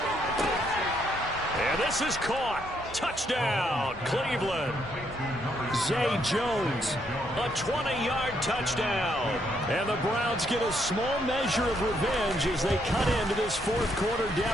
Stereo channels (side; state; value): both; normal; correlation 0.74